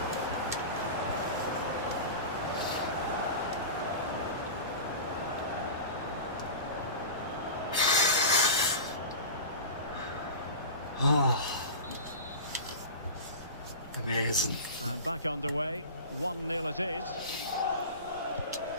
Amazing. And back underway. 1-0 it is.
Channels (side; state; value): both; inverted; correlation -0.31